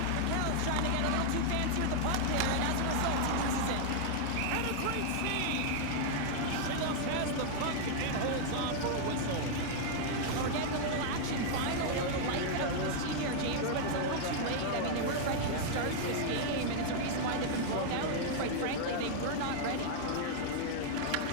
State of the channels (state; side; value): different; both; correlation 0.00